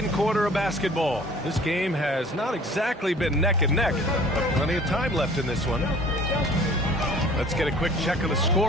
quarter of basketball. This game has not exactly been neck and neck, but plenty of time left in this one. Let's get a quick check of the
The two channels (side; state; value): both; normal; correlation 0.50